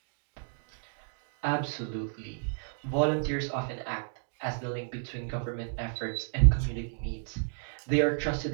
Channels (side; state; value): left; silent; digital silence